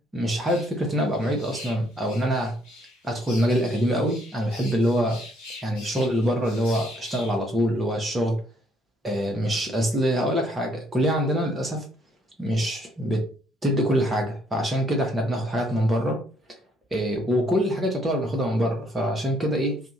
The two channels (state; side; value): normal; both; correlation 0.68